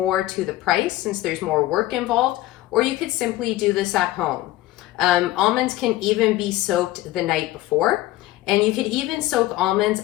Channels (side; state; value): right; quieter; 16.5 dB